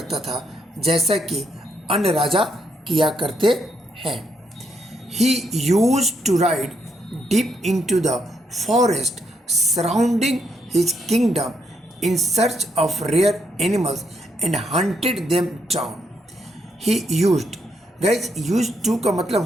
था जैसा कि अन्य राजा किया करते हैं। He used to ride deep into the forest surrounding his kingdom in search of rare animals and hunted them down. He used, guys, used to का मतलब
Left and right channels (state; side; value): normal; both; correlation 0.76